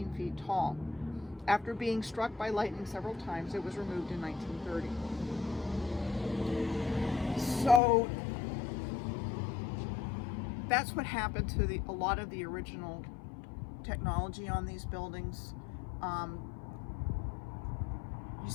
feet tall. After being struck by lightning several times, it was removed in 1930. So that's what happened to a lot of the original technology on these buildings. You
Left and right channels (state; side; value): drops out; right; at 7.8 s